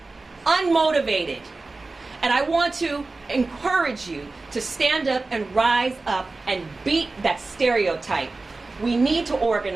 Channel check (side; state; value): left; quieter; 3.5 dB